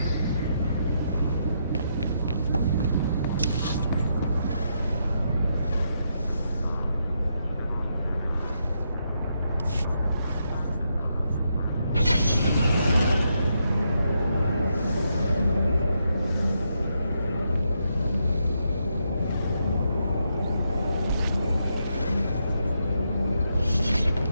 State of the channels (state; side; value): inverted; both; correlation -0.80